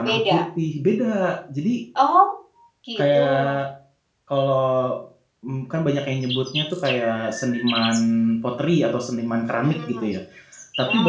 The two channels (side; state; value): both; identical; correlation 1.00